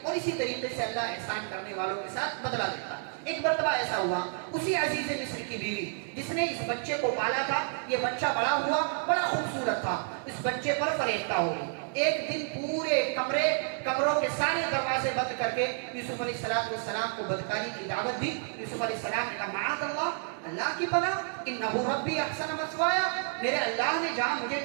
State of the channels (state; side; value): silent; left; 57 dB below the other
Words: اور اسی طریقے سے اللہ احسان کرنے والوں کے ساتھ بدلہ دیتا۔ ایک مرتبہ ایسا ہوا، اسی عزیز مصر کی بیوی جس نے اس بچے کو پالا تھا، یہ بچہ بڑا ہوا، بڑا خوبصورت تھا، اس بچے پر فریفتہ ہو گئی۔ ایک دن پورے کمروں کے سارے دروازے بند کر کے یوسف علیہ السلام کو بدکاری کی دعوت دی۔ یوسف علیہ السلام نے کہا معاذ اللہ کی پناہ، انہ ربی احسن مثوایا، میرے اللہ نے جہاں مجھے